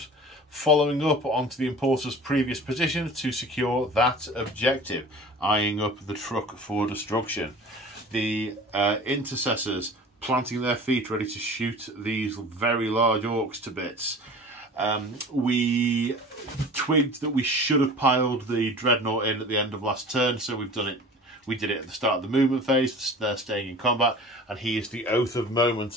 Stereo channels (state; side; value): normal; both; correlation 0.40